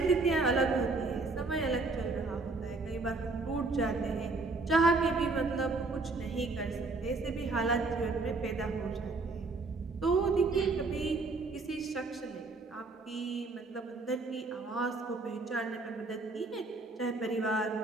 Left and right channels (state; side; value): quieter; left; 3.6 dB